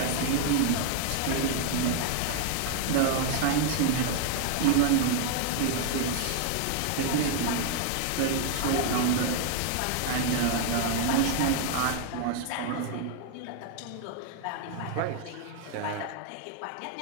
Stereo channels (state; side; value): different; both; correlation 0.00